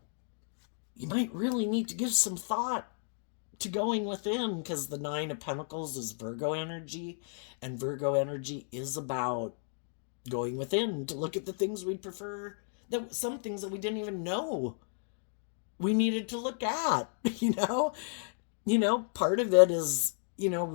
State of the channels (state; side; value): silent; right; 56 dB below the other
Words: You might really need to give some thought to going within, because the Nine of Pentacles is Virgo energy, and Virgo energy is about going within to look at the things we prefer, that some things that we didn't even know we needed to look at. Part of it is